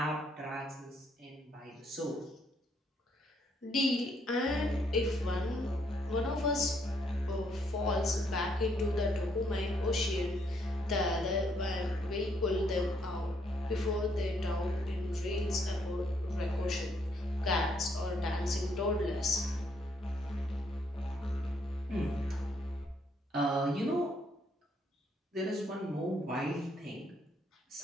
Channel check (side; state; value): both; normal; correlation 0.71